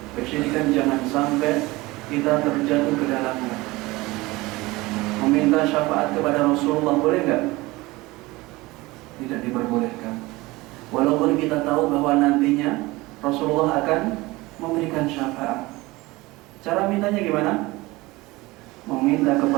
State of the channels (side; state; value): left; quieter; 21.0 dB